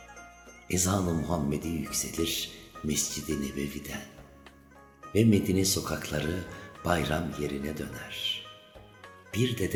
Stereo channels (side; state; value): both; identical; correlation 1.00